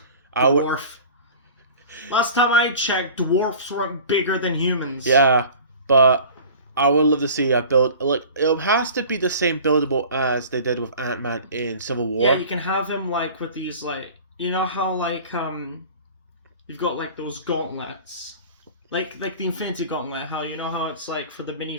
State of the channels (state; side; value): inverted; both; correlation -0.42